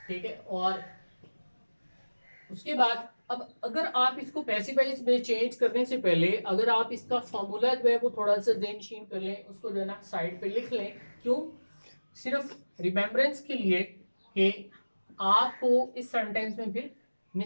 ठीक है। और उसके बाद अब अगर आप इसको पैसिवाइज में चेंज करने से पहले अगर आप इसका फॉर्मूला जो है वो थोड़ा सा ज़हनशीन कर लें, उसको जो है ना साइड पे लिख लें। क्यों? सिर्फ रिमेम्बरेंस के लिए कि आपको इस सेंटेंस में फिर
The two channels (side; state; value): both; inverted; correlation -1.00